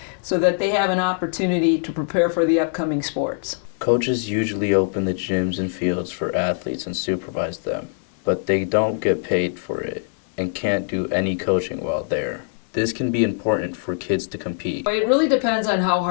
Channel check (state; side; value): silent; right; digital silence